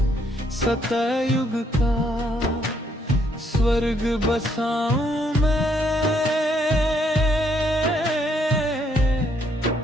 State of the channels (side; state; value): both; normal; correlation 0.71